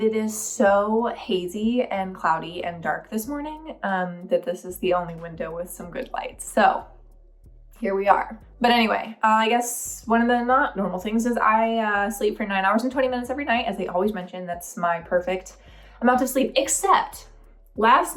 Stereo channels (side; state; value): both; identical; correlation 1.00